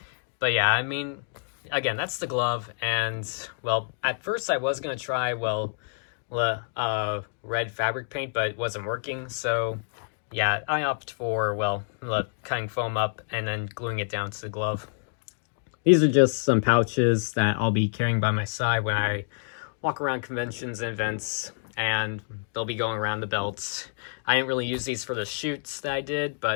But yeah, I mean, again, that's the glove. And, at first I was going to try, red fabric paint, but it wasn't working. So yeah, I opted for, cutting foam up and then gluing it down to the glove. These are just some pouches that I'll be carrying by my side when I walk around conventions and events, and they'll be going around the belts. I didn't really use these for the shoots that I did,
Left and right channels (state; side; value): silent; right; digital silence